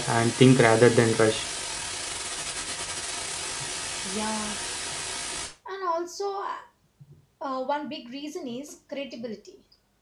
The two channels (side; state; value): both; identical; correlation 1.00